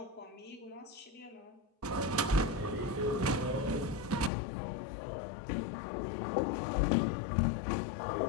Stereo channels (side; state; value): right; drops out; at 4.3 s